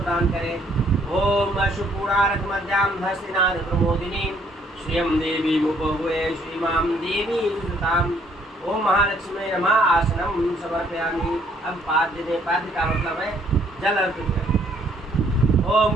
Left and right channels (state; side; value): normal; both; correlation 0.65